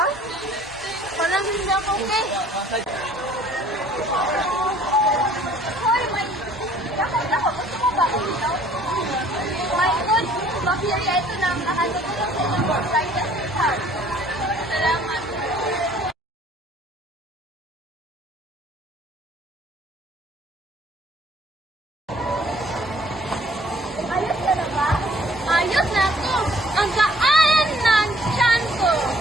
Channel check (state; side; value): normal; both; correlation 0.57